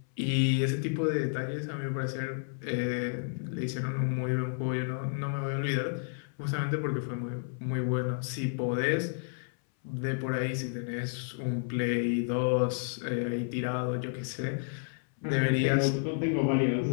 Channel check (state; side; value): silent; right; 57 dB below the other